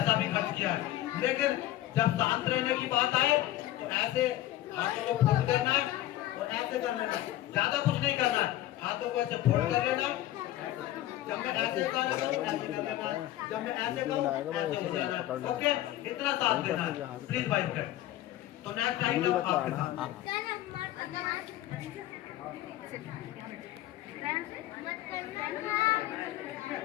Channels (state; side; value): quieter; right; 14.6 dB